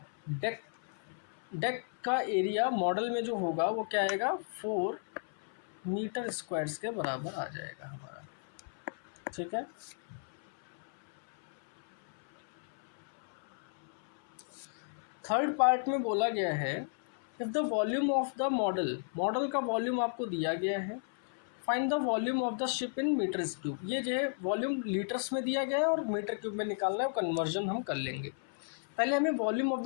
डेक का एरिया मॉडल में जो होगा वो क्या आएगा, 4 मीटर स्क्वायर्स के बराबर आ जाएगा हमारा, ठीक है। थर्ड पार्ट में बोला गया है if the volume of the model का वॉल्यूम आपको दिया गया है, find the volume of the ship in metres cube. ये जो है वॉल्यूम लीटर्स में दिया गया है और मीटर क्यूब में निकालना है, कन्वर्जन हम कर लेंगे। पहले हमें वॉल्यूम ऑफ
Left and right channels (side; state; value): right; silent; 55 dB below the other